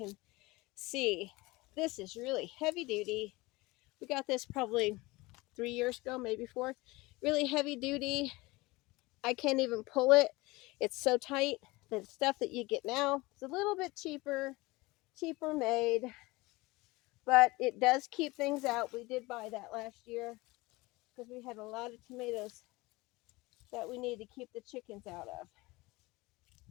see. This is really heavy duty. We got this probably 3 years ago, maybe 4. Really heavy duty. I can't even pull it. It's so tight. The stuff that you get now is a little bit cheaper made, but it does keep things out. We did buy that last year because we had a lot of tomatoes that we need to keep the chickens out of.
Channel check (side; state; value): right; quieter; 22.1 dB